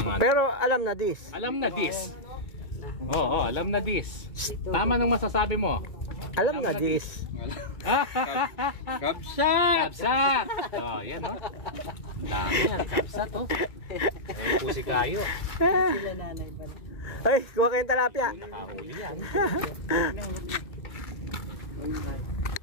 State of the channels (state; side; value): late; right; 2.2 ms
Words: Pero alam na this. Alam na this. Oo, alam na this. Tama nung masasabi mo. Alam na this. Kapsat! Kapsat! Oh, yan oh. Dami yan, kapsat oh. Ano po si Kayo? Sila nanay pa. Ay, kuha kayong talapia. Nakahuli yan.